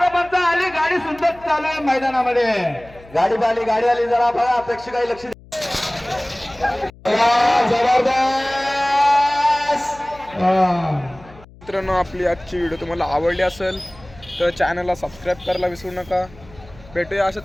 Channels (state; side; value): noise; left; hum, 23 dB below the sound